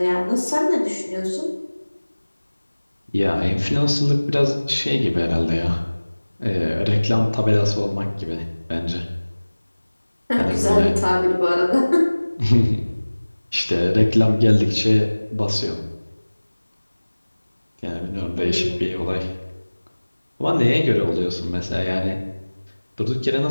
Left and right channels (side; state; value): both; inverted; correlation -1.00